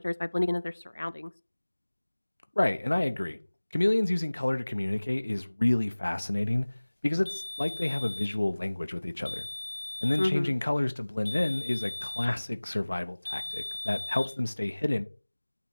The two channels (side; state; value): both; inverted; correlation -1.00